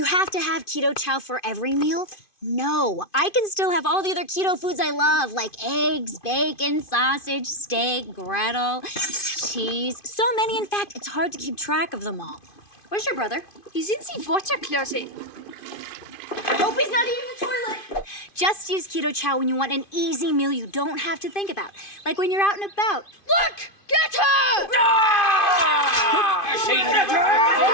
have to have Keto Chow for every meal? No, I can still have all the other keto foods I love, like eggs, bacon, sausage, steak, griddle, cheese. So many, in fact, it's hard to keep track of them all. Where's your brother? He's in the water closet. I hope he's not eating the toilet. Just use Keto Chow when you want an easy meal you don't have to think about. Like when you're out and about. Look! Get her! I say never!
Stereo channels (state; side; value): late; right; 2.5 ms